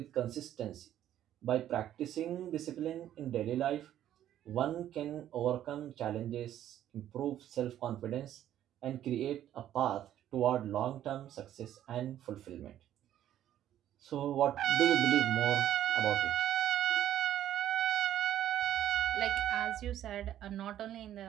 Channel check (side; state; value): left; quieter; 11.7 dB